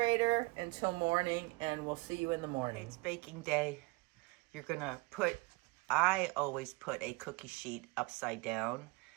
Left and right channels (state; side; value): quieter; left; 25.5 dB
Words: until morning, and we'll see you in the morning. It's baking day. You're gonna I always put a cookie sheet upside down,